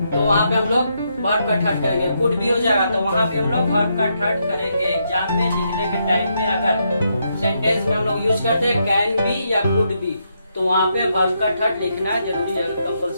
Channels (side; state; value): both; inverted; correlation -0.79